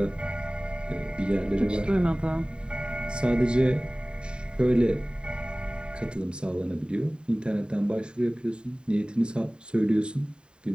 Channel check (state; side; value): late; left; 0.050 ms